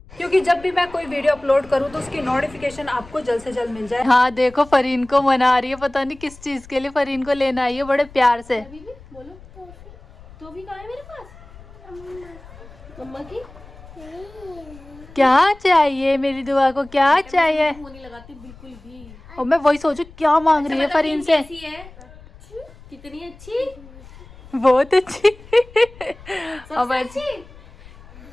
क्योंकि जब भी मैं कोई वीडियो अपलोड करूँ तो उसकी नोटिफिकेशन आपको जल्द से जल्द मिल जाए। हाँ देखो फरीन को मना रही है, पता नहीं किस चीज़ के लिए फरीन को लेना आई है बड़े प्यार से। बोलो तो भी कहाँ है मेरे पास? मम्मा की क्या चाहिए मेरी दुआ को, क्या चाहिए? मुंह नहीं लगाती बिल्कुल भी। और मैं वही सोचू क्या मांग रही है फरीन से। कैसी है? कितनी अच्छी? बहुत अच्छी। अब अच्छी?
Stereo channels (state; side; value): noise; left; rumble, 21 dB below the sound